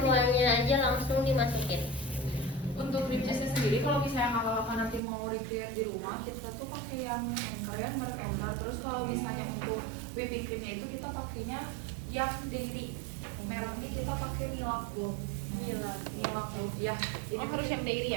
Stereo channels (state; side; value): drops out; left; at 5.0 s